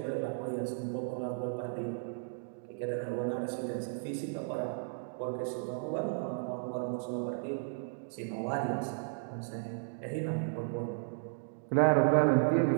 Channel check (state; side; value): silent; left; digital silence